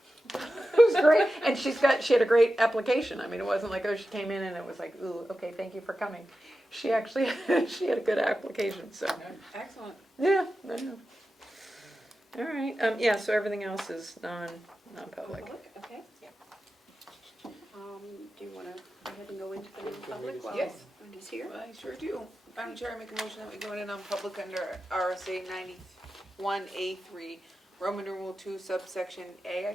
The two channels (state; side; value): normal; both; correlation 0.92